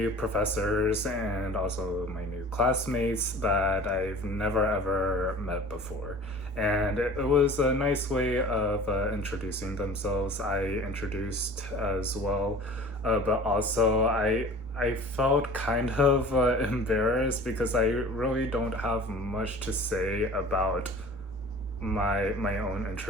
professors and also my new classmates that I've never ever met before. And it was a nice way of introducing themselves. I introduced as well, but also I felt kind of embarrassed because I really don't have much to say about my own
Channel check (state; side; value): normal; both; correlation 0.43